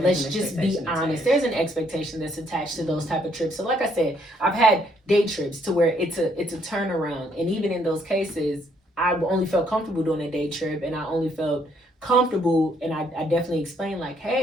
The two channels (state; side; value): normal; both; correlation 0.69